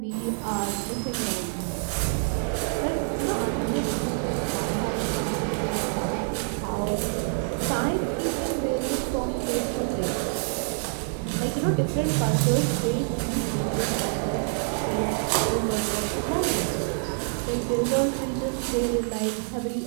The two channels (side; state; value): left; silent; 60 dB below the other